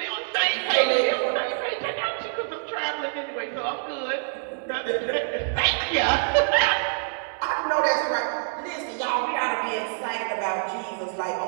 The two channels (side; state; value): left; silent; 61 dB below the other